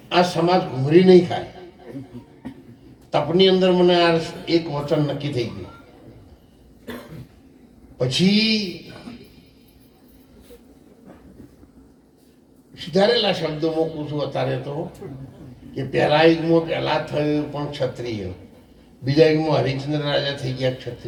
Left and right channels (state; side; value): identical; both; correlation 1.00